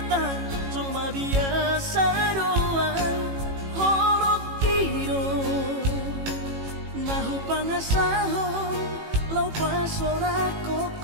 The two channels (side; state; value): left; late; 18 ms